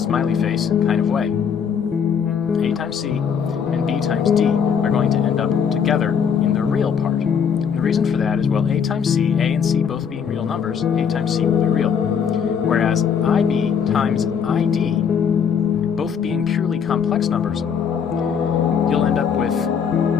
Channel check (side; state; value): right; quieter; 7.2 dB